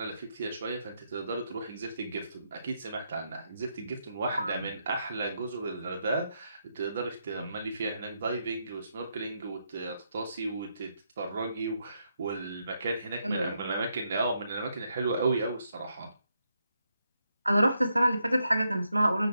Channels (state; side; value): inverted; both; correlation -0.81